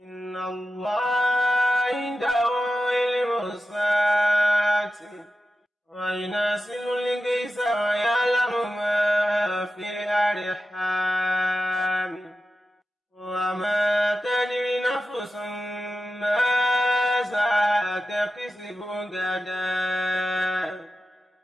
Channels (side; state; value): both; normal; correlation 0.92